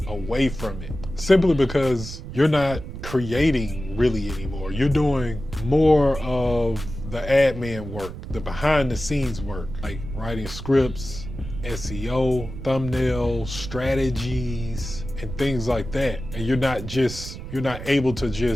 away from it, simply because you're not creating really anymore. You're doing more of the admin work, the behind the scenes work, like writing scripts, SEO, thumbnail strategies, and things like that. And you're not able to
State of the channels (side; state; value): right; noise; rumble, 10 dB below the sound